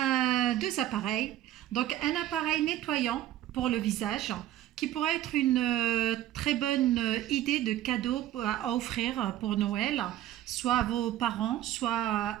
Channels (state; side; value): quieter; left; 13.1 dB